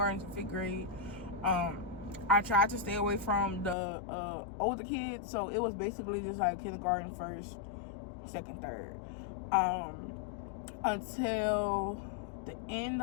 to 5th grade. I tried to stay away from the older kids, so it was basically just like kindergarten, 1st, 2nd, 3rd. Until the end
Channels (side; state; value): right; drops out; at 3.8 s